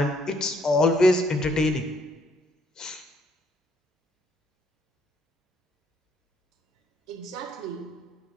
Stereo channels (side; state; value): both; normal; correlation 0.68